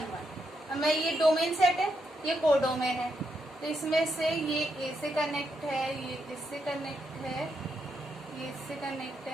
1। हमें ये डोमेन सेट है, ये कोडोमेन है, तो इसमें से ये ए से कनेक्ट है, ये इससे कनेक्ट है, ये इससे कनेक्ट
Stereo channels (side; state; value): both; normal; correlation 0.81